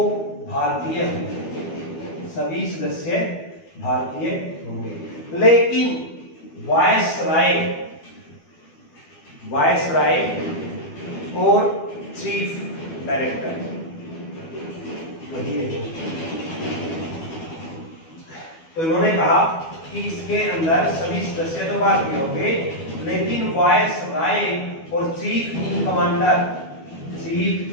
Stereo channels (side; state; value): right; late; 12 ms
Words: भारतीय होंगे, सभी सदस्य भारतीय होंगे, लेकिन वायसराय और चीफ डायरेक्टर वही है। तो इन्होंने कहा कि इसके अंदर सभी सदस्य तो भारतीय होंगे, लेकिन वायसराय और चीफ